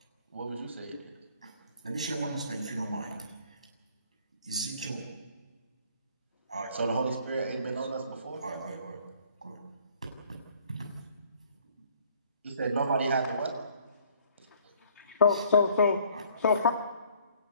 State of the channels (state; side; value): inverted; both; correlation -0.58